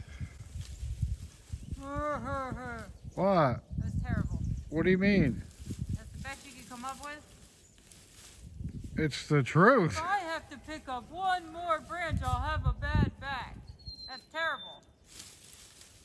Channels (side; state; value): both; identical; correlation 1.00